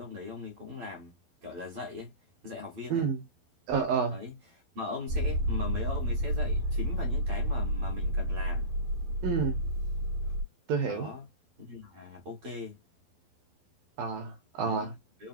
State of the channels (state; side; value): late; left; 12 ms